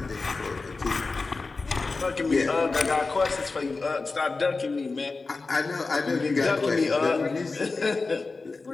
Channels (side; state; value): right; quieter; 3.9 dB